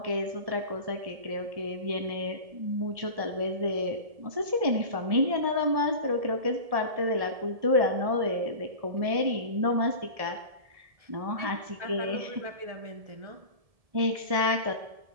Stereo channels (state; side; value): late; left; 1.7 ms